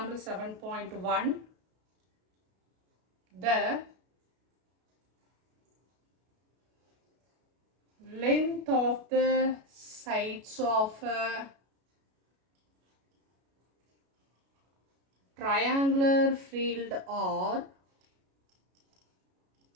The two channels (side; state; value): left; late; 33 ms